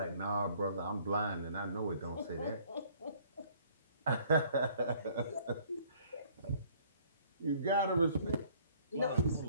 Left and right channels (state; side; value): inverted; both; correlation -0.59